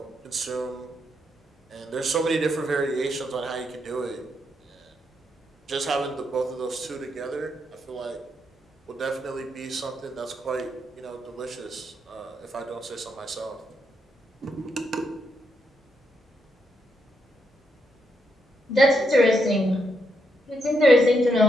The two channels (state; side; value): normal; both; correlation 0.79